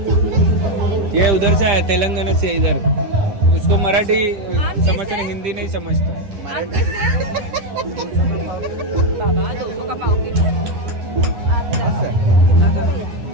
ये उधर से है, तेलंगाना से. इधर उसको मराठी समझते नहीं, हिंदी नहीं समझता है.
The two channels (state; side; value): late; left; 10 ms